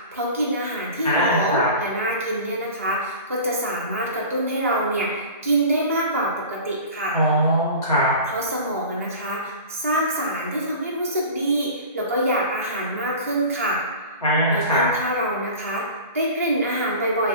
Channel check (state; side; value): inverted; both; correlation -0.37